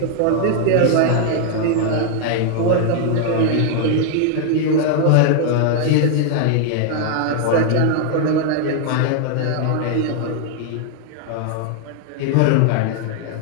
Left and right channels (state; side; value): different; both; correlation 0.00